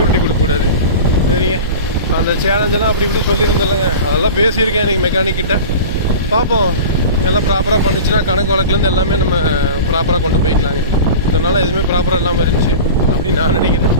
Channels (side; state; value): both; inverted; correlation -0.34